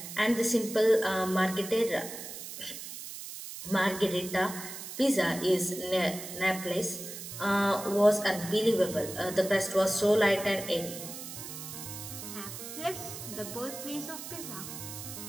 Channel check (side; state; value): right; noise; hiss, 10 dB below the sound